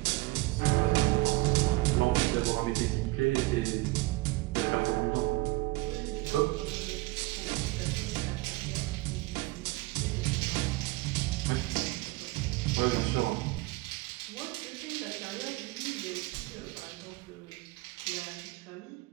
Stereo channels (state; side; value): quieter; left; 21.4 dB